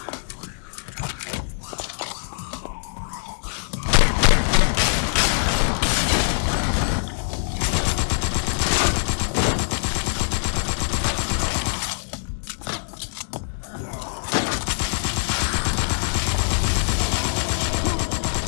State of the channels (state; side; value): silent; right; digital silence